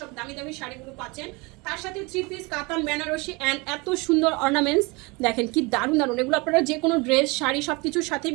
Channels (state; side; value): quieter; left; 26.8 dB